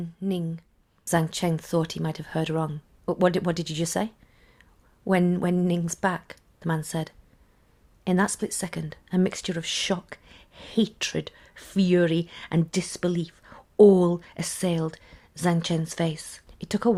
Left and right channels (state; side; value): identical; both; correlation 1.00